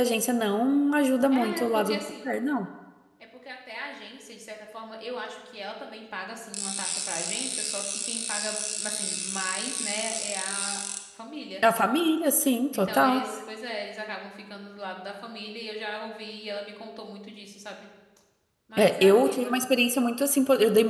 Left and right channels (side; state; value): both; identical; correlation 1.00